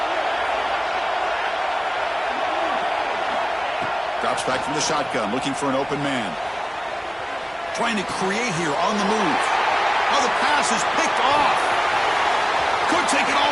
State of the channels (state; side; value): identical; both; correlation 1.00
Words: Drops back from the shotgun, looking for an open man. Trying to create here on the move. Oh, the pass is picked off. Could take it